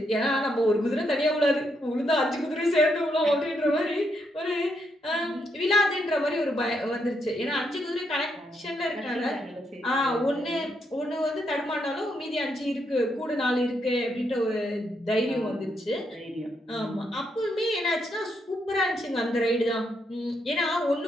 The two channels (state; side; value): normal; both; correlation 0.78